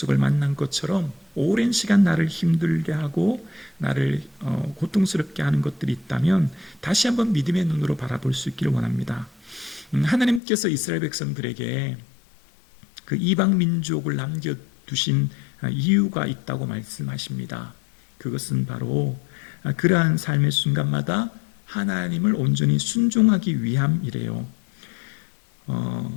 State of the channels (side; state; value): right; drops out; at 10.4 s